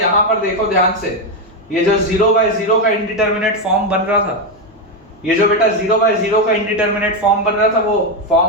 पर देखो ध्यान से, ये जो 0/0 का इंडिटरमिनेट फॉर्म बन रहा था, ये जो बेटा 0/0 का इंडिटरमिनेट फॉर्म बन रहा था, वो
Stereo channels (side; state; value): both; normal; correlation 0.07